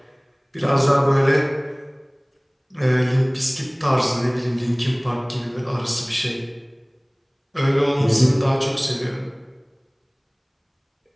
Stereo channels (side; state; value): both; identical; correlation 1.00